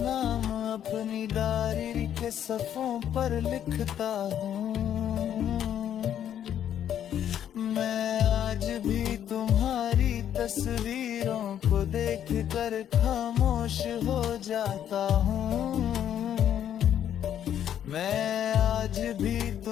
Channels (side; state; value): right; quieter; 10.0 dB